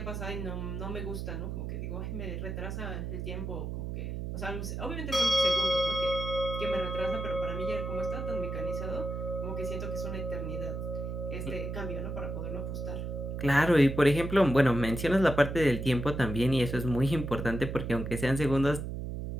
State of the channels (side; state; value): right; noise; hum, 5 dB below the sound